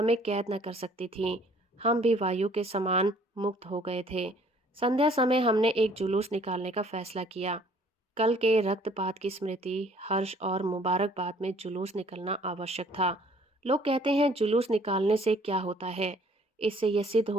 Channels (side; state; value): both; normal; correlation 0.58